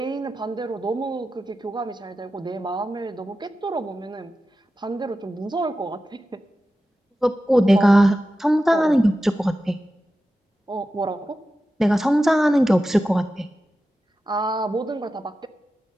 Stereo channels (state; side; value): normal; both; correlation 0.93